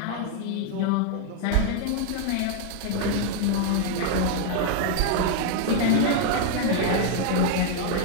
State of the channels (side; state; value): both; different; correlation 0.00